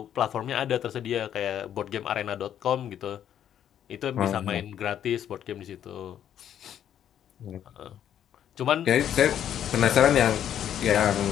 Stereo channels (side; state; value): right; quieter; 10.1 dB